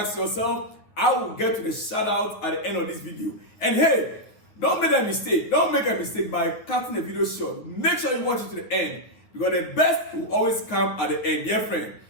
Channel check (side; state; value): right; late; 9.5 ms